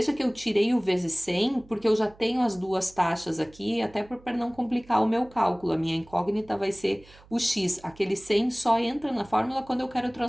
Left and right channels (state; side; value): noise; right; hum, 25 dB below the sound